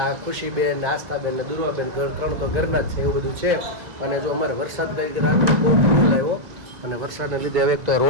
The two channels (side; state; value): left; late; 1.9 ms